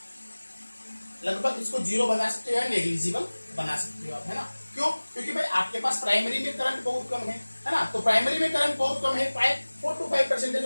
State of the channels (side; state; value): both; inverted; correlation -1.00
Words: लगभग इसको जीरो बना सकते हो या नेग्लिजिबल बना सकते हो आप, है ना। क्यों? क्योंकि भाई आपके पास प्राइमरी में करंट बहुत कम है ना। तो प्राइमरी में करंट बहुत कम है, 4 to 5%